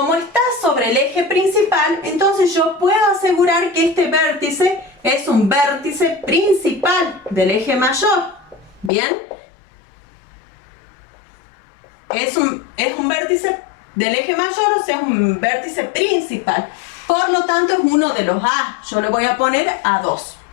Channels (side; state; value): right; drops out; at 8.9 s